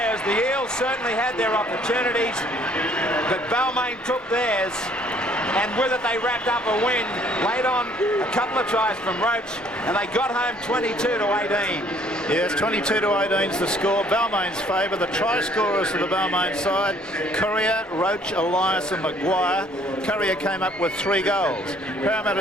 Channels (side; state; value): both; normal; correlation 0.60